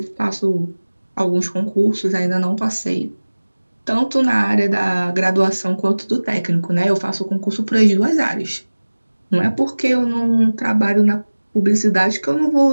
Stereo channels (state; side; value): inverted; both; correlation -1.00